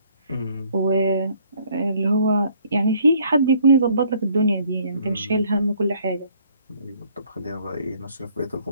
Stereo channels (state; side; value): inverted; both; correlation -0.62